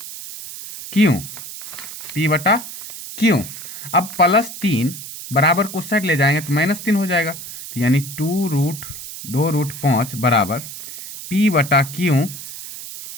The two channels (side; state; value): right; noise; hiss, 11 dB below the sound